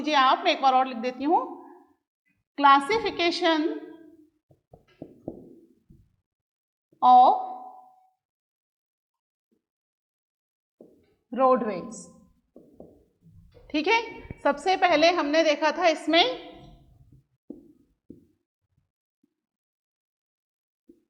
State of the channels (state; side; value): identical; both; correlation 1.00